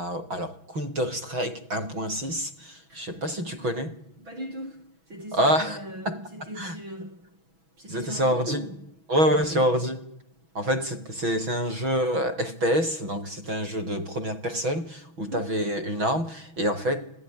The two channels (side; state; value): left; late; 6.1 ms